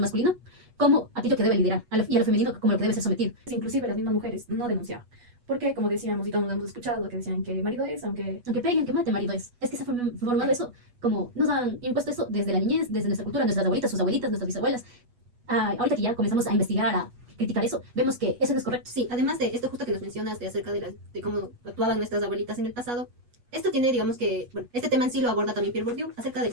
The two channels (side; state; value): left; late; 8.2 ms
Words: masculino como aquello que debe liderar y a lo femenino como lo que debe ser sometido. Inclusive las mismas mujeres no denunciaban. Porque, como decíamos, y todos hemos escuchado lo que decían que marido es, Aunque peguen, que mate, marido es que se ha formado eso, como nos han impuesto eso desde la niñez, desde nuestra cultura, nuestras abuelitas, sus abuelitas, nuestras bisabuelas. Ahorita que ya comenzamos a investigar, a criticar eso, vemos que eso no es correcto. Sí, además de esto justo que nos mencionas de acerca de cómo actuaban nuestras abuelitas en el pasado, esto tiene, digamos que, bueno, este tema en sí lo aborda también Pierre Bourdieu acerca